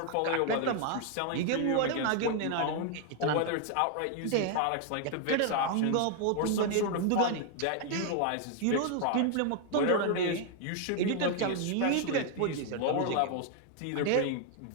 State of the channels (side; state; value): both; different; correlation 0.00